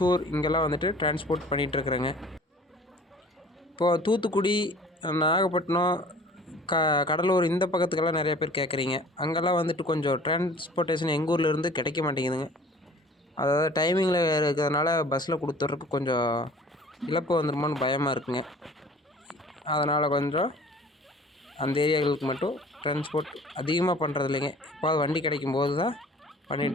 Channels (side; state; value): both; normal; correlation 0.48